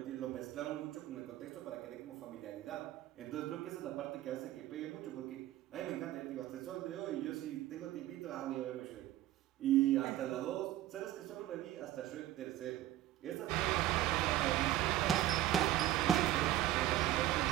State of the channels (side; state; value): left; quieter; 13.8 dB